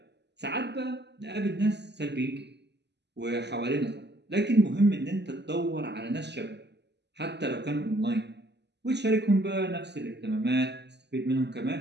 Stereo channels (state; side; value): late; left; 0.50 ms